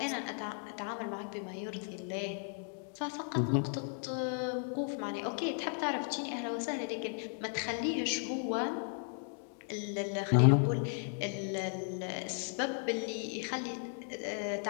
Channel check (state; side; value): silent; right; 54 dB below the other